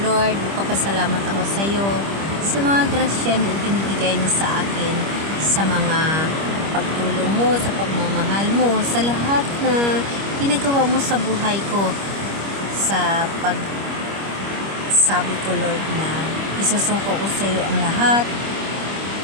Lord, magpapasalamat ako sa iyo sa mga grasya na ibinibigay mo sa akin, sa mga pagtulong mo, sa pagmamahal mo, sa lahat na ginagawa mo sa buhay ko, sa pagsabi ko Lord na isasuko ko sa iyo ang lahat,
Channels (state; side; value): late; left; 25 ms